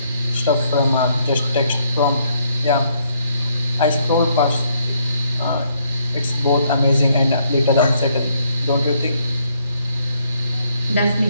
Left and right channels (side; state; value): both; inverted; correlation -0.71